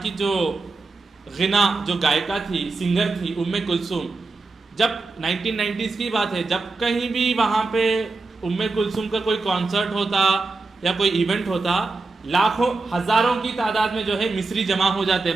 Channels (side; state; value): left; quieter; 3.7 dB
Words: کی جو غنا جو گائکہ تھی، سنگر تھی، کلثوم. جب 1990s کی بات ہے، جب کہیں بھی وہاں پہ کلثوم کا کوئی کانسرٹ ہوتا یا کوئی ایونٹ ہوتا، لاکھوں ہزاروں کی تعداد میں جو ہے مصری جمع ہو جاتے